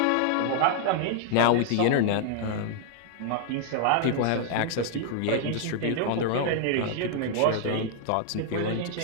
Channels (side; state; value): both; different; correlation 0.00